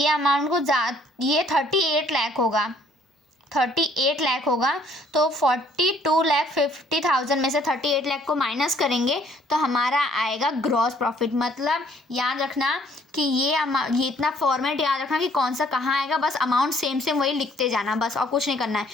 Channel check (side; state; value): both; normal; correlation 0.61